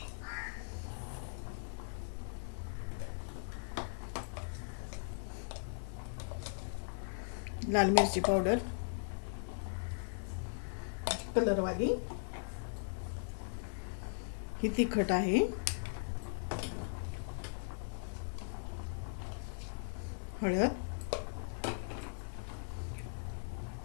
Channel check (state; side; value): silent; right; digital silence